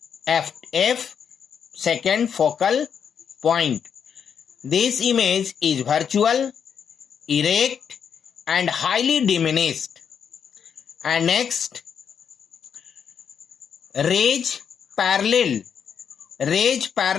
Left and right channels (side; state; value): right; quieter; 7.4 dB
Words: second focal point. This image is virtual, erect and highly diminished. And next, rays parallel